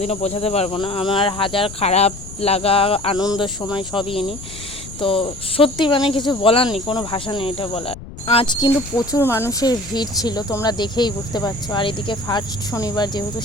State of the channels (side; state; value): left; noise; rumble, 14 dB below the sound